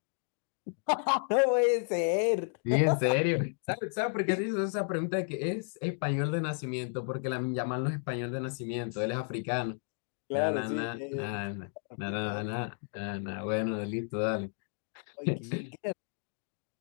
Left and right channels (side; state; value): right; silent; 56 dB below the other